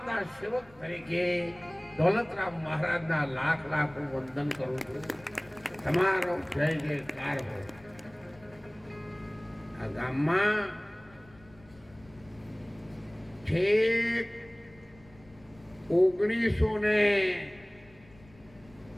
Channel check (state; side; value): noise; left; rumble, 25 dB below the sound